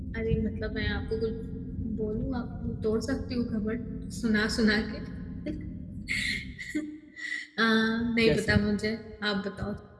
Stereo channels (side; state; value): both; identical; correlation 1.00